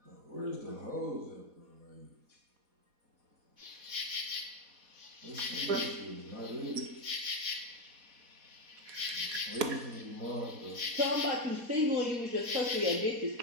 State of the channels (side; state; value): left; late; 4.2 ms